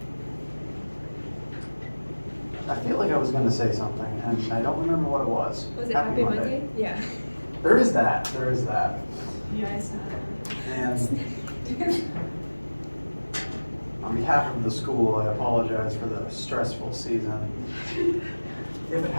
I feel like I was going to say something, and I don't remember what it was. Was it Happy Monday? Yeah. There is that. There is that. Yes. And on behalf of the school, I apologize for the stressful season. If it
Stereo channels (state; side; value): inverted; both; correlation -1.00